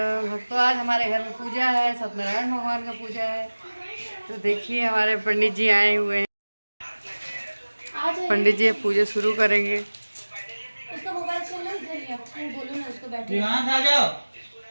आज हमारे घर में पूजा है, सत्यनारायण भगवान का पूजा है। तो देखिए हमारे पंडित जी आए हुए हैं। पंडित जी पूजा शुरू करेंगे। उसका मोबाइल चल रहा है, इधर ही आप बोलो ना उसको बैठे। यहाँ से आ जाओ।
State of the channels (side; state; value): both; inverted; correlation -1.00